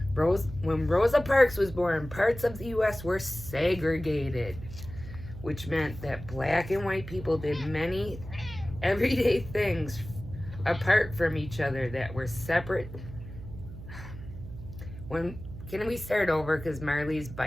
When Rosa Parks was born, parts of the U.S. were segregated, which meant that black and white people did many everyday things apart from each other that were separate. Can we start over? Because Marley's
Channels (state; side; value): noise; right; hum, 12 dB below the sound